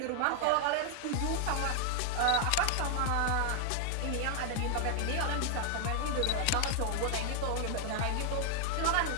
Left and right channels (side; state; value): both; different; correlation 0.00